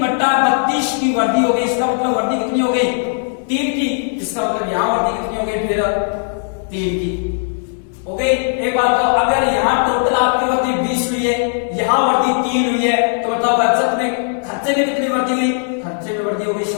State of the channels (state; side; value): silent; right; 68 dB below the other